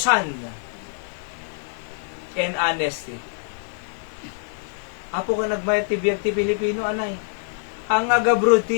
and honesty. Apo ka nagmayat ti biyag ti Pilipino, anay. Ang agabro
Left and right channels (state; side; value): silent; right; digital silence